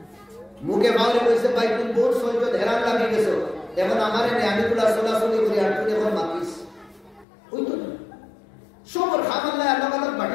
মুখে বাউলে কইছে ভাই তুমি বহুত সহ্য হেরান লাগি গেছো এখন আমারে নে আমি গুলা সোলাসলি করে আর তুই এখন মাতিস ওই তো সবর খাম আল্লাহ আল্লাহ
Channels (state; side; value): drops out; right; at 7.2 s